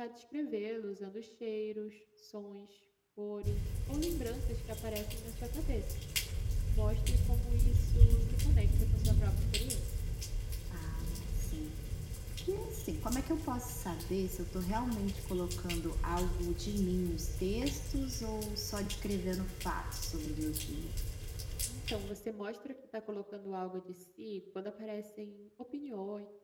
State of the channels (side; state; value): both; identical; correlation 1.00